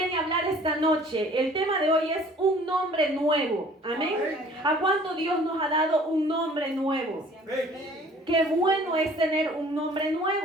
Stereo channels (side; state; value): both; normal; correlation 0.52